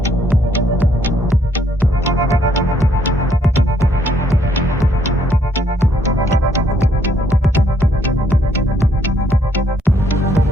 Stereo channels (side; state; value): both; normal; correlation 0.69